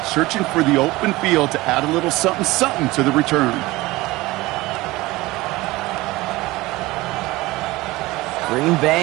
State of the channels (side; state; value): left; quieter; 19.9 dB